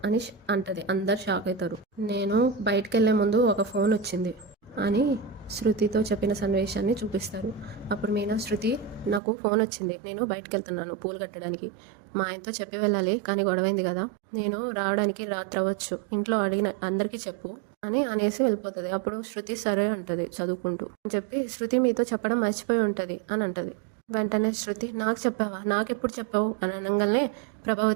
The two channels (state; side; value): drops out; left; at 9.2 s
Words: అని అంటది. అందరు షాక్ అవుతారు. నేను బయటకు వెళ్లే ముందు ఒక ఫోన్ వచ్చింది అని శృతితో చెప్పిన సన్నివేశాన్ని చూపిస్తారు. అప్పుడు మీనా శృతి నాకు ఫోన్ వచ్చింది, నేను బయటకు వెళ్తున్నాను పూలు కట్టడానికి, మా ఆయనతో చెప్పి వెళ్ళాలి కానీ గొడవైంది కదా, నేను రావడానికి రాత్రి అవ్వచ్చు, ఇంట్లో అడిగిన అందరికీ చెప్పు అని అనేసి వెళ్ళిపోతుంది. అప్పుడు శృతి సరే అంటది చదువుకుంటూ అని చెప్పి, శృతి మీతో చెప్పడం మర్చిపోయి ఉంటది అని అంటది. వెంటనే శృతి నాకు చెప్పావా, నాకెప్పుడు చెప్పావు అని అనగానే